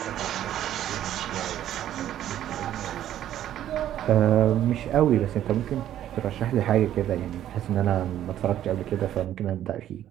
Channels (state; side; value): quieter; left; 11.7 dB